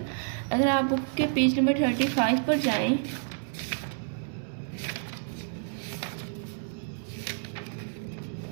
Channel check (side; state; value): left; silent; 58 dB below the other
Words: अगर आप बुक के पेज नंबर 35 पर जाएं